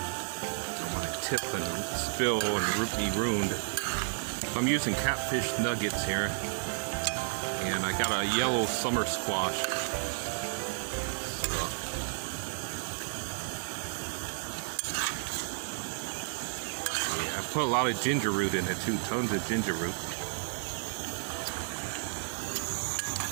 want to tip and spill and be ruined. I'm using catfish nuggets here, and I got a yellow summer squash. Yeah, I put a lot of ginger root in it too, tons of ginger root.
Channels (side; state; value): left; silent; digital silence